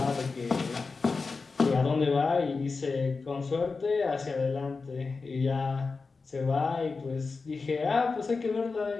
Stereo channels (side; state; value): right; quieter; 4.3 dB